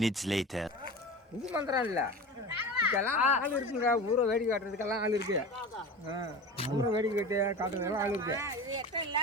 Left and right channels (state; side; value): normal; both; correlation 0.31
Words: later. இது மந்திரம் இல்ல, இதுக்கெல்லாம் ஆள் இருக்குங்க. ஊரை வேடிக்கை காட்டுறதுக்கெல்லாம் ஆள் இருக்கு. ஊரை வேடிக்கை காட்டுறதுக்கெல்லாம் ஆள் இருக்கு.